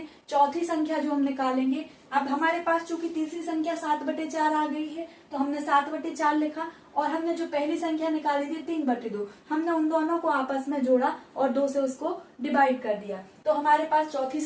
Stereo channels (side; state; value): both; identical; correlation 1.00